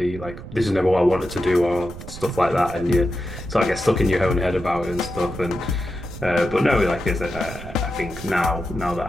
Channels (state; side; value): noise; right; rumble, 12 dB below the sound